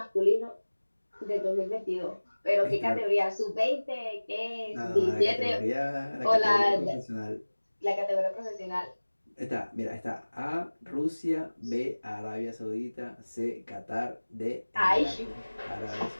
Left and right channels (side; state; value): both; inverted; correlation -1.00